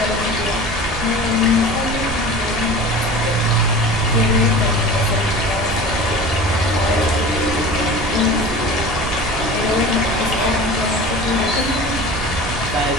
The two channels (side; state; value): right; noise; rumble, 7 dB below the sound